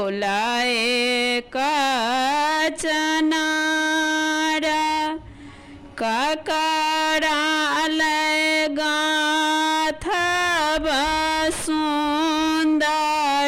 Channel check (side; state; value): both; identical; correlation 1.00